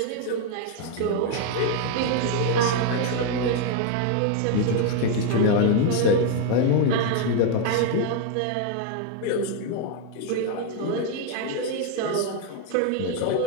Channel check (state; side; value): different; both; correlation 0.01